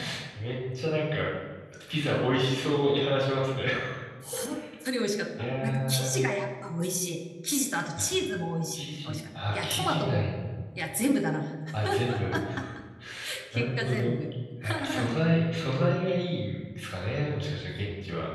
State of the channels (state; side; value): identical; both; correlation 1.00